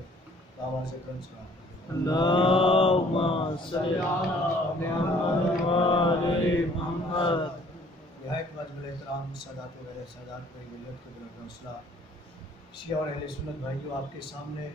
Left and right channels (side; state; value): both; normal; correlation 0.57